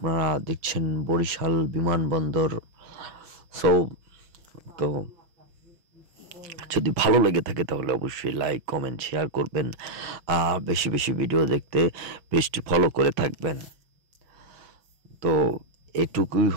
দেখছেন বরিশাল বিমানবন্দর। সো তো যদি ভালো লেগে থাকে তাহলে অবশ্যই লাইক কমেন্ট শেয়ার করবেন, আর বেশি বেশি ভিডিও দেখতে পেজটি ফলো করে থাকবেন। তো এটুকুই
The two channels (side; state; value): left; late; 6.1 ms